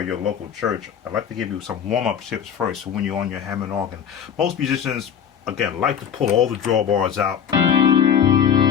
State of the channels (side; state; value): right; quieter; 8.2 dB